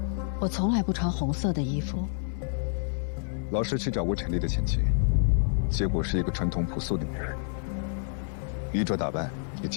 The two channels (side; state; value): right; silent; digital silence